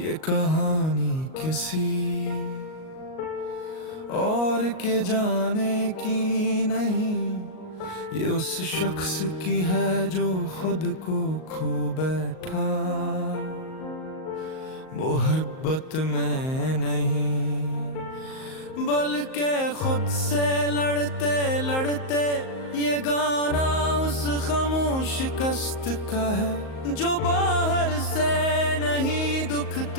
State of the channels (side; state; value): right; late; 38 ms